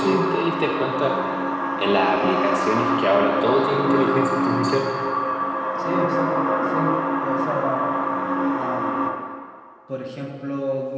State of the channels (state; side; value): identical; both; correlation 1.00